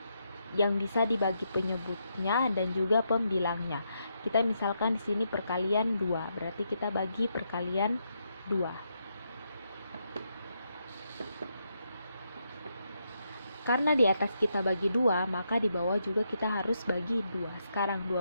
yang bisa dibagi penyebutnya dan juga pembilangnya. Kita misalkan di sini perkalian 2, berarti kita bagi perkalian 2. Karena di atas kita bagi 2, maka di bawah juga kita harus bagi 2. Sekarang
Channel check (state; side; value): inverted; both; correlation -0.80